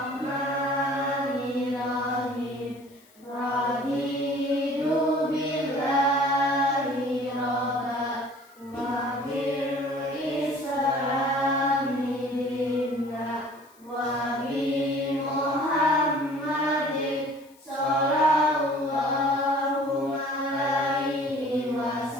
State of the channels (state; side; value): noise; left; hiss, 29 dB below the sound